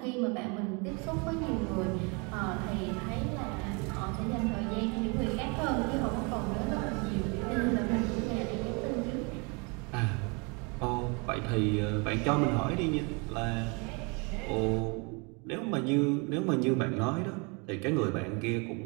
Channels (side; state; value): left; quieter; 31.4 dB